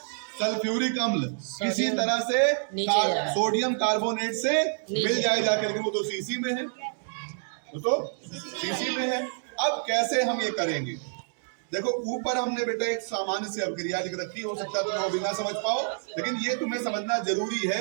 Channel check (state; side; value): silent; left; digital silence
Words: सल्फ्यूरिक अम्ल किसी तरह से सोडियम कार्बोनेट से मिल जाए जाके, लेकिन वो तो शीशी में है, शीशी में है। अब कैसे हम ये करेंगे? देखो ऊपर हमने बेटा एक सामान्य सी अभिक्रिया लिख रखी, हो सकता है तुम वो भी ना समझ पाओ, लेकिन ये तुम्हें समझना जरूरी